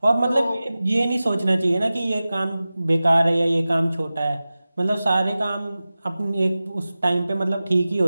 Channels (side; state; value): both; inverted; correlation -0.96